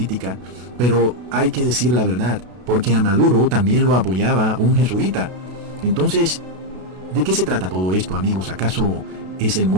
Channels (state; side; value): late; left; 32 ms